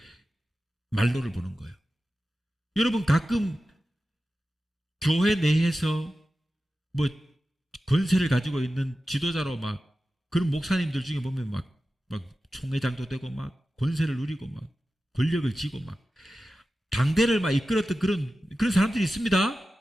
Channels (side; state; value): both; normal; correlation 0.94